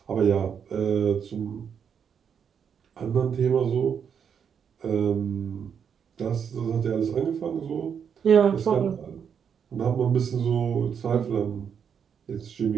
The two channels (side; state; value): left; quieter; 7.4 dB